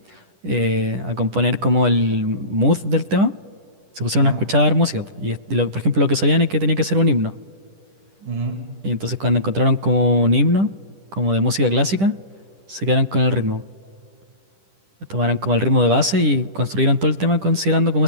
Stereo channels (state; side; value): late; left; 10 ms